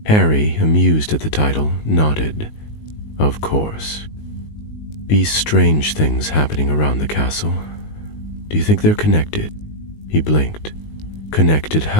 Harry, amused at the title, nodded. "Of course. These strange things happening around the castle. Do you think they're connected?" He blinked. "Connected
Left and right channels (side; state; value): right; late; 19 ms